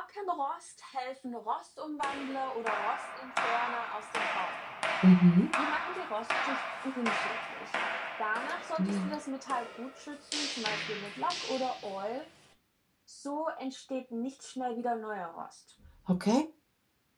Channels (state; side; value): identical; both; correlation 1.00